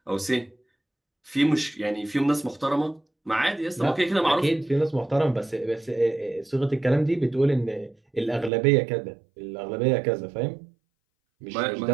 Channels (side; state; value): left; drops out; at 8.5 s